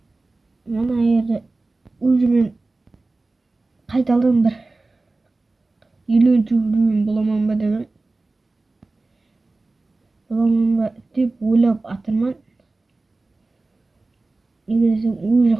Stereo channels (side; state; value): left; quieter; 3.3 dB